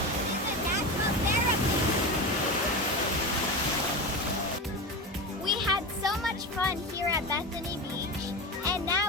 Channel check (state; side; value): normal; both; correlation 0.22